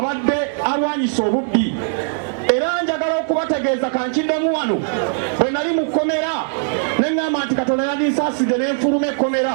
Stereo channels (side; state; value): left; silent; digital silence